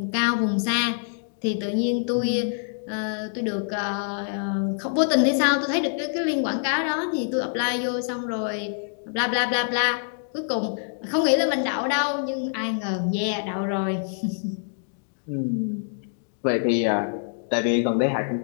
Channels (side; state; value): right; silent; digital silence